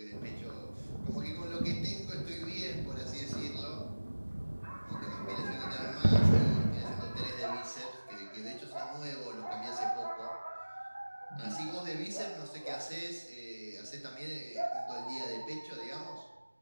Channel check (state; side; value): inverted; both; correlation -1.00